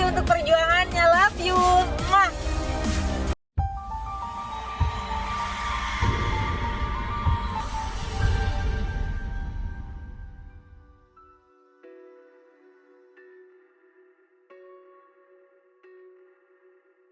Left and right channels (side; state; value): both; identical; correlation 1.00